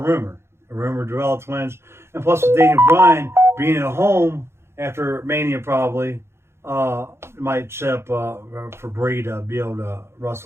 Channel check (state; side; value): late; left; 0.12 ms